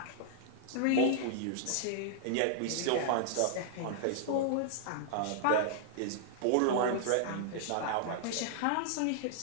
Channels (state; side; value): different; both; correlation -0.01